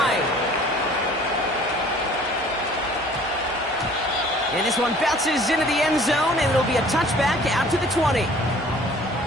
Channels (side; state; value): both; normal; correlation 0.52